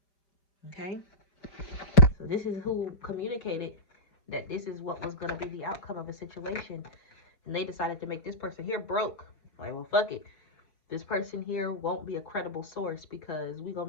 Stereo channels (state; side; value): late; right; 4.9 ms